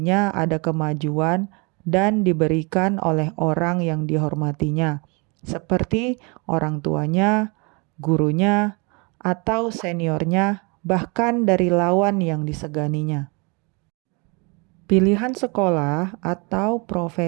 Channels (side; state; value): left; quieter; 30.7 dB